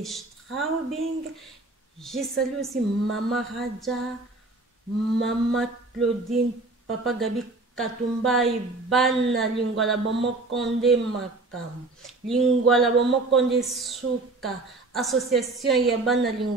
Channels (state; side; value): quieter; left; 3.3 dB